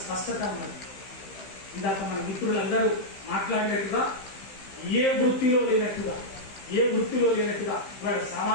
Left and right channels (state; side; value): late; right; 15 ms